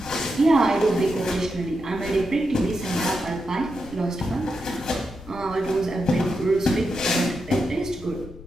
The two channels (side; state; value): left; noise; rumble, 17 dB below the sound